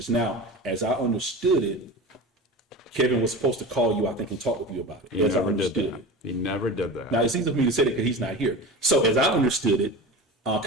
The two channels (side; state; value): both; normal; correlation 0.31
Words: Now, as I understood it, Kevin was supposed to call you, I think, and talk with you about it. He As I never did understood that. it. He never did that. Now, it's easy for me to say that because he's not here. So as I understood it,